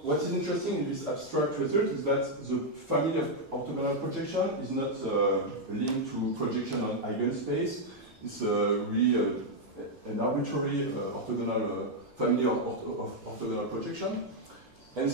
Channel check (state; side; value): late; left; 1.7 ms